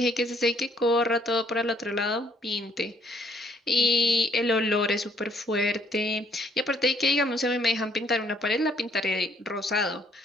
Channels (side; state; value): both; normal; correlation 0.65